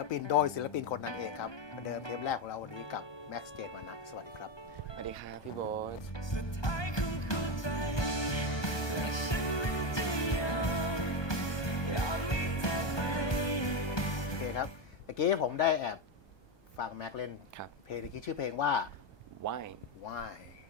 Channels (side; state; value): right; late; 1.2 ms